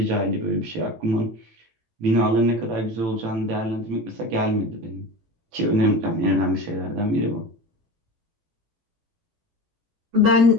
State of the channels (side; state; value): left; late; 18 ms